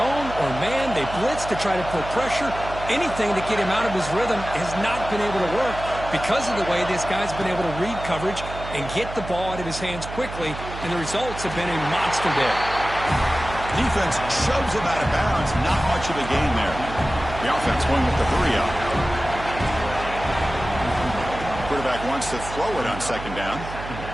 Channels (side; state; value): right; noise; hum, 10 dB below the sound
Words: or man, they blitz to try to put pressure. Anything to get him out of his rhythm has not been able to work because of the way this guy's been able to read coverage and get the ball out of his hands quickly, and the results have been a monster day. Defense shoves him out of bounds. Not much of a gain there. The offense going with the hurry up. Quarterback wants to throw it on second down.